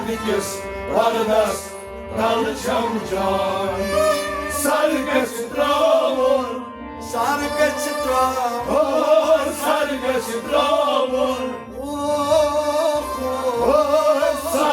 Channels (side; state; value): both; identical; correlation 1.00